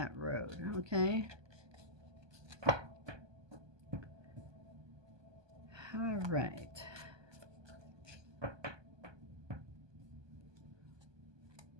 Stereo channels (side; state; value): left; late; 1.2 ms